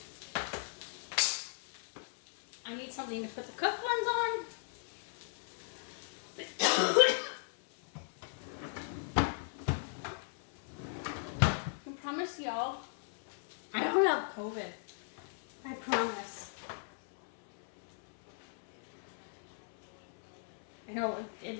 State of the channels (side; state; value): right; silent; 53 dB below the other